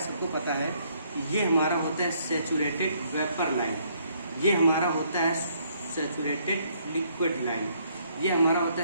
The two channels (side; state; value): both; inverted; correlation -0.67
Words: सबको पता है, ये हमारा होता है सैचुरेटेड वेपर लाइन, ये हमारा होता है सैचुरेटेड लिक्विड लाइन, ये हमारा होता